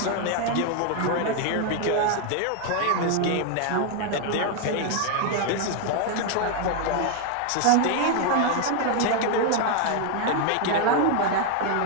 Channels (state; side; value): different; both; correlation 0.00